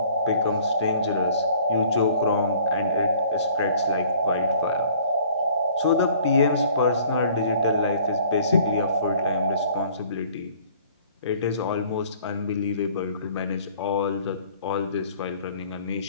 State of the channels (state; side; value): inverted; both; correlation -0.55